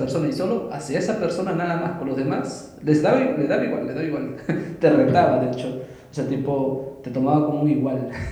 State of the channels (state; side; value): identical; both; correlation 1.00